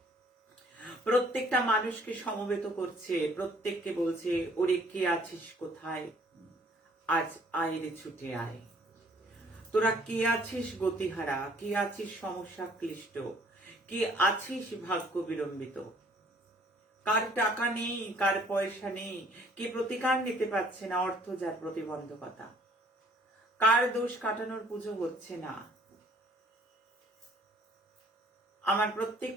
প্রত্যেকটা মানুষকে সমবেত করছে, প্রত্যেককে বলছে, ওরে কে আছিস কোথায়, আজ আয় রে ছুটে আয়। তোরা কে আছিস গতিহারা, কে আছিস সমস্যা ক্লিষ্ট, কে আছিস ভাগ্য বিলম্বিত, কার টাকা নেই, কার পয়সা নেই, কে প্রতিকার নিতে পারছে না, অর্থ যার প্রতিবন্ধকতা, কার দোষ কাটানোর পুজো হচ্ছে না। আমার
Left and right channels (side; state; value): both; normal; correlation 0.59